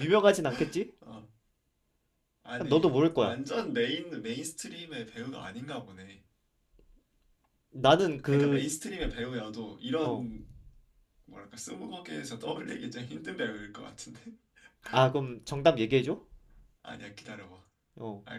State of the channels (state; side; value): identical; both; correlation 1.00